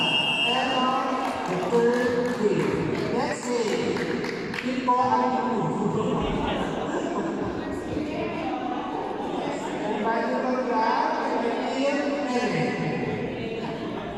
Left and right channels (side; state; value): both; identical; correlation 1.00